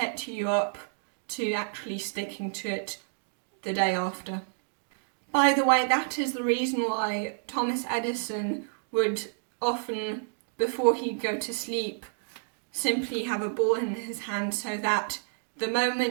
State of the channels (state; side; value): silent; left; digital silence